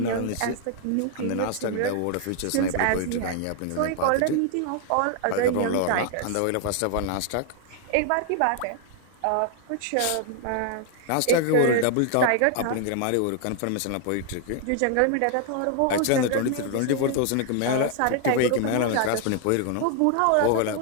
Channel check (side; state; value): both; different; correlation 0.00